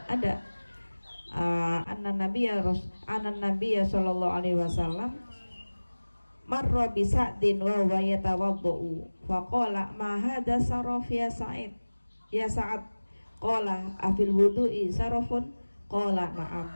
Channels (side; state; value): both; inverted; correlation -1.00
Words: ada anan Nabi ya Shallallahu Alaihi Wasallam marra bi Sa'din wa huwa yatawaddu faqala ma hadha saraf ya Sa'id ya Sa'ad qala afil wudu'i sarafun qala na'am